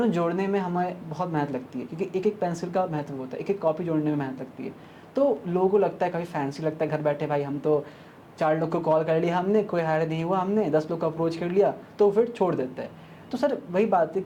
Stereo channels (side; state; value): both; identical; correlation 1.00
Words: में हमें बहुत मेहनत लगती है, क्योंकि एक पेंसिल का महत्व होता है, एक कॉपी जोड़ने में मेहनत लगती है। तो लोगों को लगता है काफ़ी फैंसी लगता है, घर बैठे भाई हम तो 4 लोग को कॉल कर लिया हमने, कोई हायर नहीं हुआ, हमने 10 लोग को अप्रोच कर लिया, तो फिर छोड़ देते हैं। तो सर वही बात है